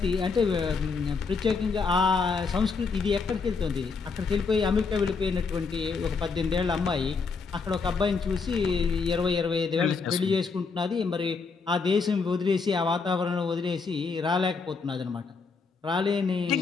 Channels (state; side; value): quieter; right; 4.8 dB